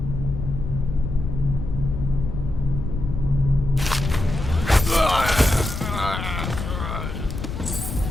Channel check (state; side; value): noise; left; rumble, 5 dB below the sound